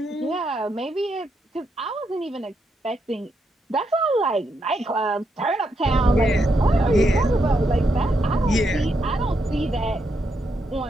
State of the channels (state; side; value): normal; both; correlation 0.80